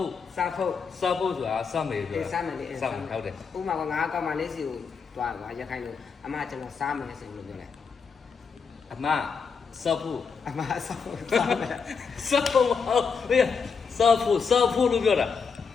ို့ စားဖို့ စားဖို့ဆိုတာစားမယ်ဆိုတာ စားမယ်လေ စားမယ်ဟုတ်တယ် ဥမာကငါကောက်မှလေးစီကိုတွားပါရခိုင်လိုအမကျွန်တော်စားမယ်ဆိုလို့ပြောလိုက် အမစားဖို့ အမစားဖို့စားမယ် စားဖို့ဟုတ်လေစားဖို့လို့ပြောတာ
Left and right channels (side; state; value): right; quieter; 5.6 dB